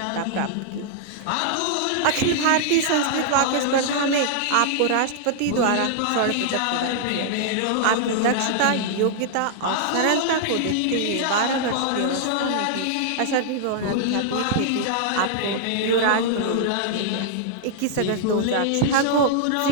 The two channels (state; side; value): different; both; correlation -0.01